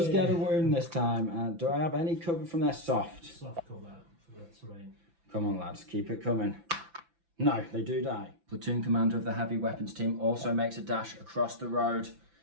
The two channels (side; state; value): left; late; 5.9 ms